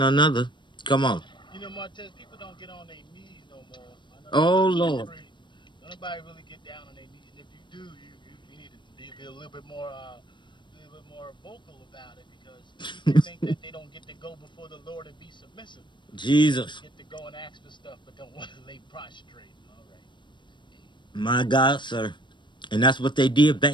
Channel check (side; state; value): right; late; 0.22 ms